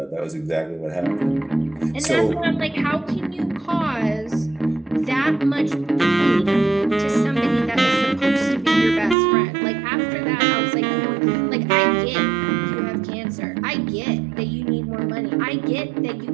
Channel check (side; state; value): left; drops out; at 9.2 s